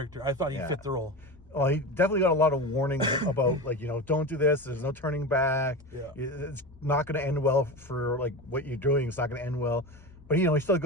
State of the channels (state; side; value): normal; both; correlation 0.24